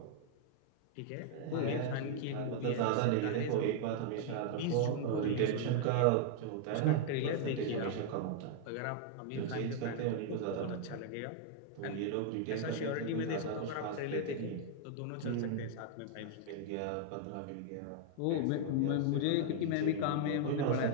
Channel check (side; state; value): both; different; correlation 0.00